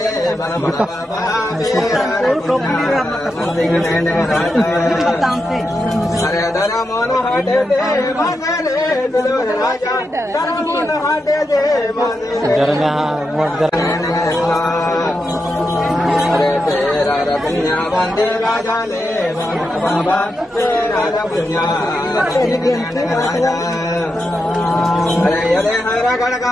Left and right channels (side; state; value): both; normal; correlation 0.86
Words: बन बाबा अरे धर्मोन हटे दे मगरे दुलर राजा धर्मोन हटे दे अरे तेरा रपन्या बंदी राजा ले बन बाबा तेरा रपन्या राजा अरे यदे हरा